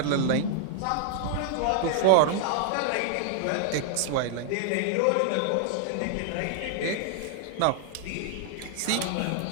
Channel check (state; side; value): different; both; correlation 0.00